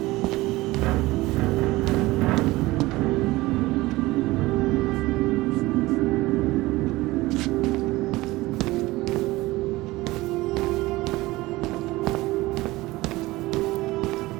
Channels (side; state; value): left; quieter; 19.5 dB